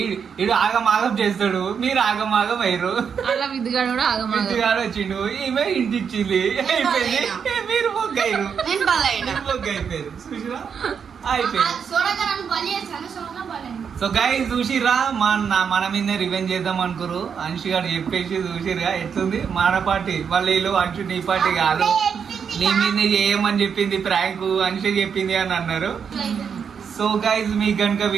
ఈడు ఆగమాగం చేస్తాడు, మీరు ఆగమాగం అయ్యారు. అలా విద్దుగాడు కూడా ఆగమాగం. విద్యుగాడు వచ్చిండు, ఈమె ఇంటి ఇచ్చింది, అయిపోయింది. మీరు మొగ్గయ్యారు, మొగ్గ అయిపోయారు. చూసిరా అయిపోయింది. సో గైస్ చూసిరా, మన మీద రివెంజ్ చేద్దాం అనుకోరు. అంశు గారు చెప్పేసి చూసిరా ఎట్లుంది మన పార్టీ. వాళ్ళు వీళ్ళు అంశు నీ పార్టీ కాదు, నీ మీద చేయమని చెప్పింది ప్రాంక్, అంశు చెప్పింది అని అన్నారు. సో గైస్ మీకు కనుక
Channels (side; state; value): left; quieter; 6.9 dB